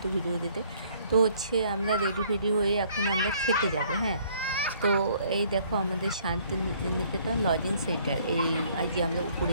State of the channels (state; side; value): inverted; both; correlation -0.61